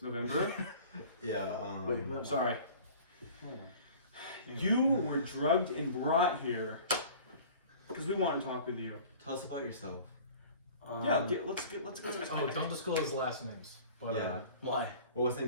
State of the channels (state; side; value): inverted; both; correlation -0.45